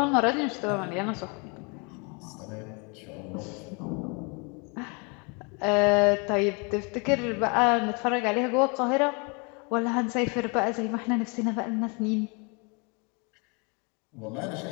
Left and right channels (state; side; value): quieter; right; 32.5 dB